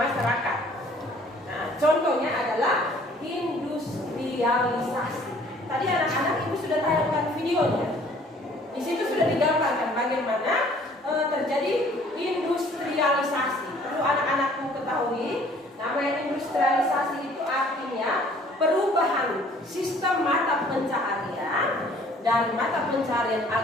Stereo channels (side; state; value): both; normal; correlation 0.56